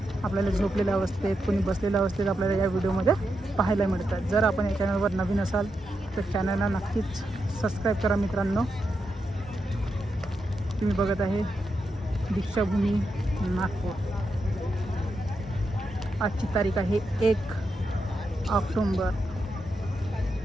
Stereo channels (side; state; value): both; normal; correlation 0.86